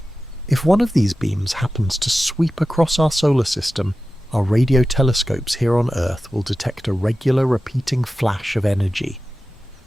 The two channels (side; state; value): both; normal; correlation 0.94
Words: If one of these beams happens to sweep across our solar system, our radio telescopes here on Earth will detect a regular repeating flash of energy.